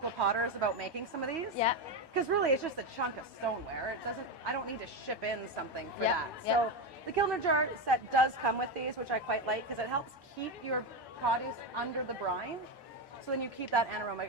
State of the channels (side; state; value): left; late; 1.2 ms